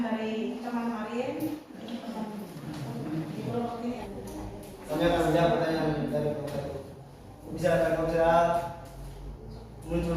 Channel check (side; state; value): both; identical; correlation 1.00